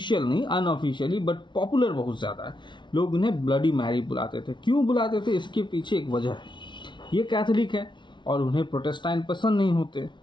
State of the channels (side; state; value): right; late; 0.23 ms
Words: नहीं, अनऑफिशियली, बट पॉपुलर बहुत ज़्यादा है। लोग उन्हें ब्लडी मैरी बुलाते थे। क्यों बुलाते थे? इसके पीछे एक वजह है। ये कैथोलिक है और उन्हें प्रोटेस्टेंट पसंद नहीं होते,